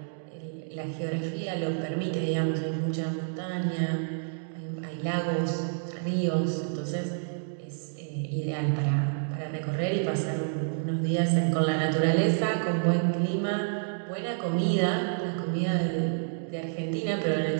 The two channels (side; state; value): left; silent; digital silence